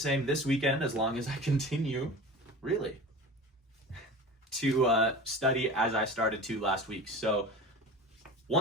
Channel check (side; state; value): both; normal; correlation 0.34